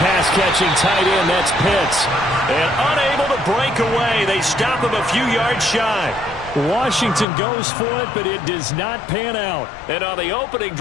tight end, that's Pitts. And unable to break away, they stop him a few yards shy. Washington goes for it, but it does not pan out. And on the opening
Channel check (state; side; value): drops out; right; at 7.2 s